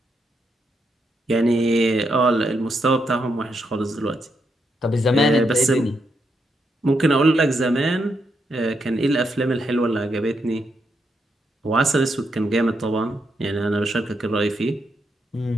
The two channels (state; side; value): normal; both; correlation 0.80